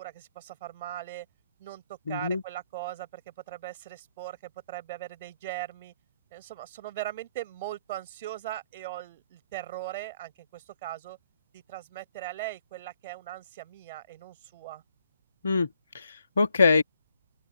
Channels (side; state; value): both; inverted; correlation -0.72